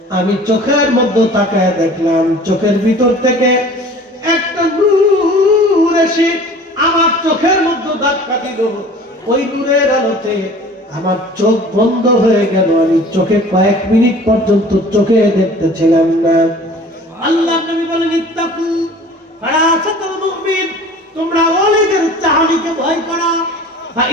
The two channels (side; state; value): both; normal; correlation 0.45